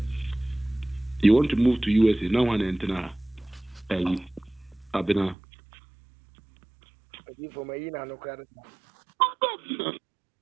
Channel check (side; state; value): left; drops out; at 5.4 s